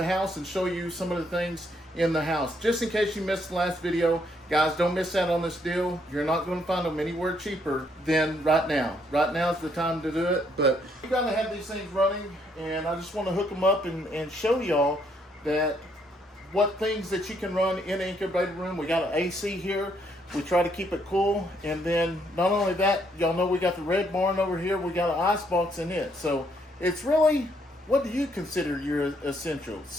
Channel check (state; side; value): normal; both; correlation 0.71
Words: house and show you some of the things in the house. Just in case you missed the last video, guys, don't miss out on this deal. You're not going to find them anywhere cheaper than right now. Right now is the time to do it, but you got to have these things running, and I just want to hook them up and show y'all that what things that you can run in the incubator room. We got an AC here. We try to keep it cool, and then not only that, y'all know we got the red barn over here. We got an ice box in it. So it's really, what do you consider your essentials?